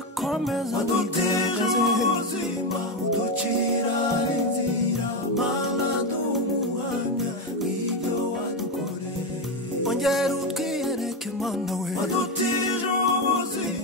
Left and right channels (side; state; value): both; normal; correlation 0.11